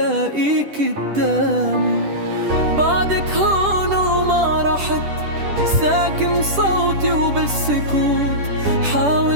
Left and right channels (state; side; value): late; left; 10 ms